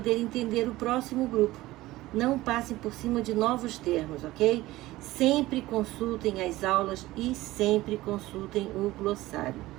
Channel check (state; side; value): quieter; left; 17.7 dB